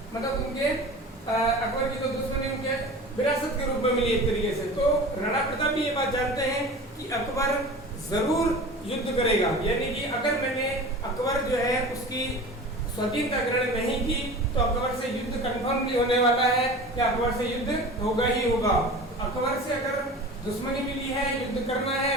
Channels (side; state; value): both; normal; correlation 0.36